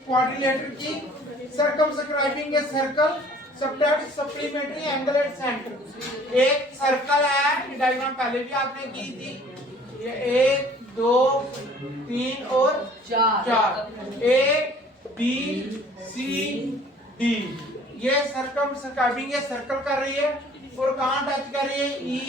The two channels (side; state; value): both; normal; correlation 0.53